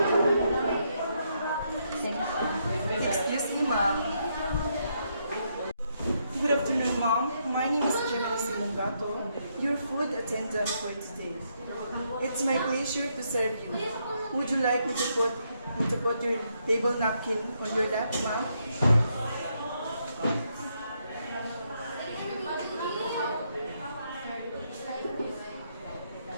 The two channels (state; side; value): inverted; both; correlation -0.77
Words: Excuse me, ma'am. Good afternoon, ma'am. My name is Gemma Simongato, your food attendant for today. It's my pleasure to serve you. Would you like me to put your table napkin on your lap, ma'am?